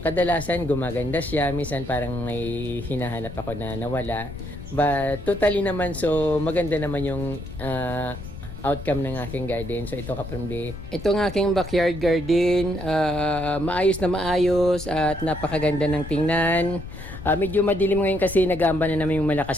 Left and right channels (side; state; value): left; noise; rumble, 12 dB below the sound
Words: kadalasan gumaganda siya, minsan parang may hinahanap ako na nawala. But totally naman so maganda naman yung outcome ng aking garden. So ito ka-Promdi. Ito ang aking backyard garden. Maayos na maayos at napakaganda ng tingnan. Medyo madilim ngayon kasi nag-aamba na naman yung